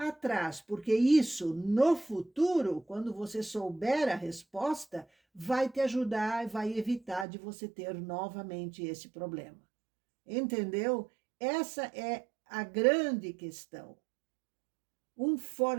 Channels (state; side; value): drops out; left; at 7.2 s